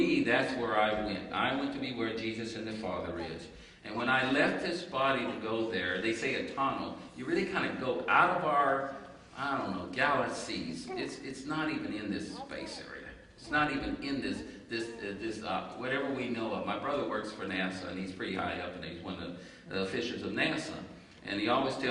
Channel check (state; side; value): identical; both; correlation 1.00